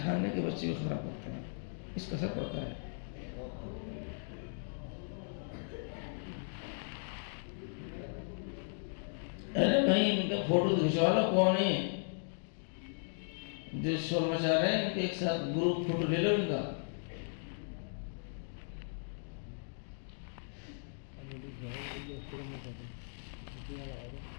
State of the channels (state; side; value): silent; right; digital silence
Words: کے بچے بھی خراب کرتے ہیں. اس کا اثر پڑتا ہے. ارے بھائی ان کا فوٹو کھینچوا لو، کون ہے جو شور مچا رہے ہیں، ان کے ایک ساتھ گروپ فوٹو لے لو ان کا.